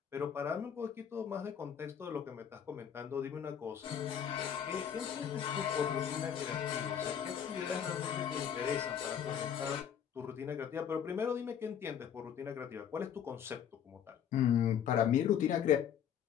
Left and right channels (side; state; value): right; quieter; 8.7 dB